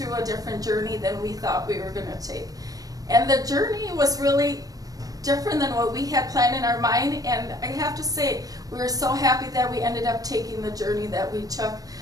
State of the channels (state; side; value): late; left; 0.18 ms